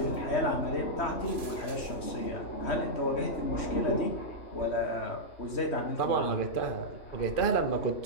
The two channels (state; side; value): late; right; 3.1 ms